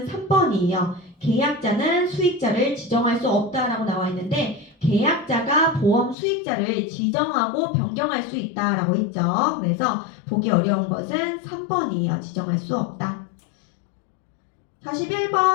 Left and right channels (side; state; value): right; drops out; at 6.2 s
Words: 3번이에요. 계약자는 수익자를 지정할 수 없다라고 나와 있는데 계약자가 보험 수익자를 지정하고 변경할 수 있다라고 했죠. 그래서 보기 어려운 것은 3번이에요. 지정할 수 없다.